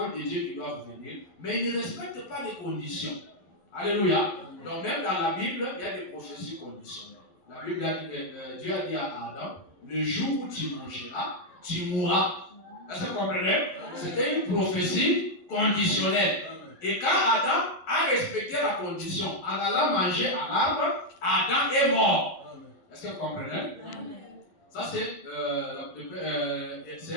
de Dieu qui doivent venir, mais ils ne respectent pas les conditions. Alléluia. Donc même dans la Bible, il y a des prophéties conditionnelles. La Bible a dit, Dieu a dit à Adam, le jour où tu mangeras, tu mourras. Est-ce que vous comprenez? C'était une prophétie conditionnelle. Et quand Adam a respecté la condition, en allant manger à l'arbre, Adam est mort. Est-ce que vous comprenez? Ça, c'est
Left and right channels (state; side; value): late; right; 11 ms